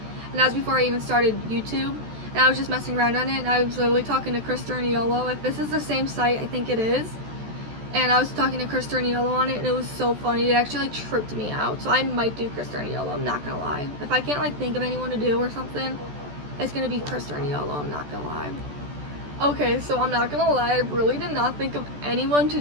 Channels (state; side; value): late; left; 14 ms